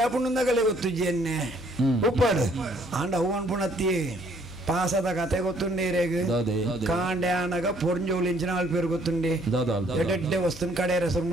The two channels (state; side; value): normal; both; correlation 0.64